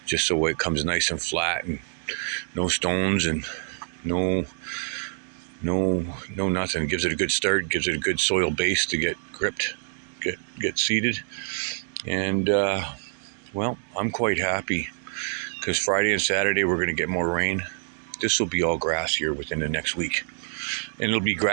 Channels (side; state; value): left; silent; digital silence